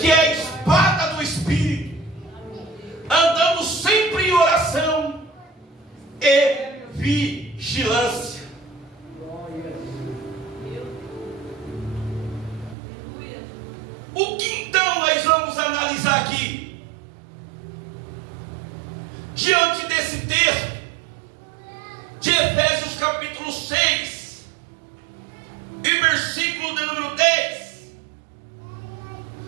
é a espada do Espírito, andando sempre em oração e vigilância. O que então nós vamos analisar aqui? Diante desse texto de Efésios capítulo 6 e versículo de número 10,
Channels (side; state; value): left; drops out; at 12.8 s